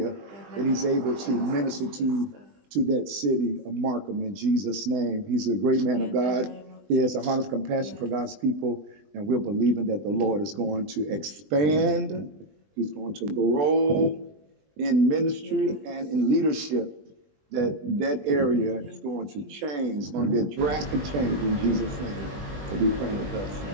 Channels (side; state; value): left; late; 20 ms